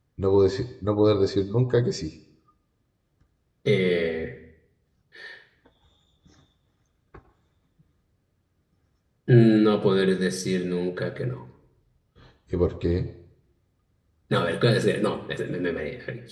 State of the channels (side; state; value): both; identical; correlation 1.00